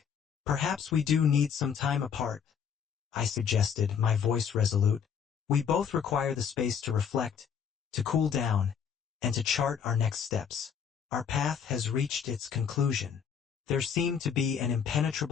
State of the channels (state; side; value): quieter; right; 7.4 dB